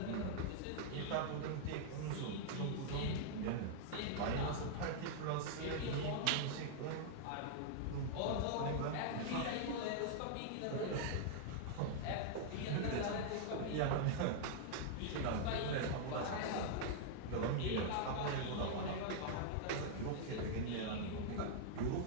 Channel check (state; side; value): different; both; correlation -0.01